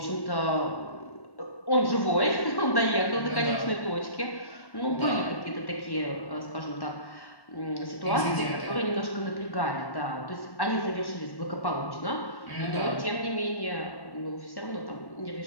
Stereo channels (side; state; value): right; late; 1.1 ms